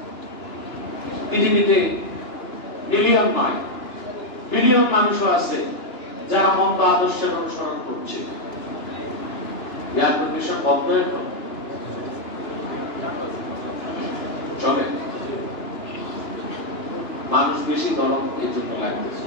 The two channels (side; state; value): right; late; 2.9 ms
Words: পৃথিবীতে মিলিয়ন নয়, বিলিয়ন মানুষও আছে যারা মন্দ আদর্শের অনুসরণ করছে। এয়ার কন্ডিশন বন্ধ এখন চলে, মানুষ বেশি গরম এই জন্য লাগতেছে।